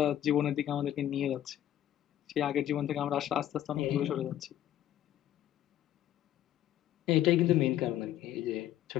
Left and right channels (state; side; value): quieter; right; 12.2 dB